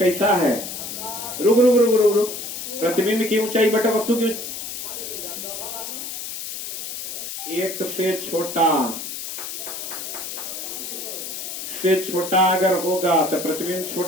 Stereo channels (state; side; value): noise; left; hiss, 7 dB below the sound